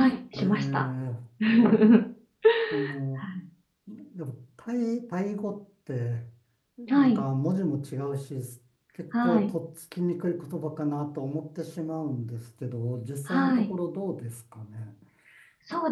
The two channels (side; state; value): both; identical; correlation 1.00